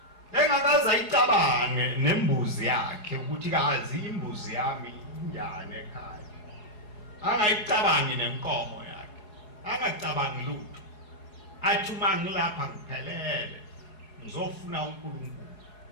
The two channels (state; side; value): late; right; 4.7 ms